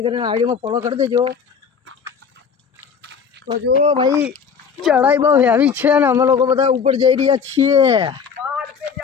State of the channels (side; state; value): right; quieter; 6.3 dB